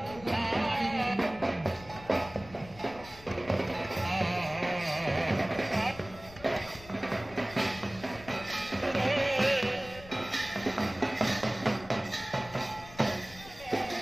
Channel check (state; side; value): noise; left; rumble, 18 dB below the sound